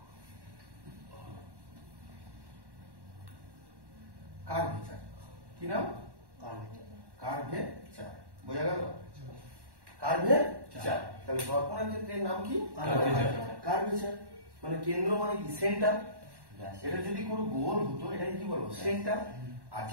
কার্ভেচার কি নাম কার্ভেচার বোঝা গেল কার্ভেচার তাহলে দর্পণের ক্ষেত্রে নাম কি কার্ভেচার মানে কেন্দ্র মানে কি সেন্টার এটা যদি কোনো গোল হতো এটাকে কি বলবো সেন্টার আর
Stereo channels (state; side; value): late; left; 1.1 ms